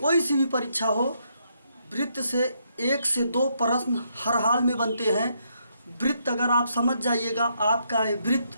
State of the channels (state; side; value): inverted; both; correlation -0.76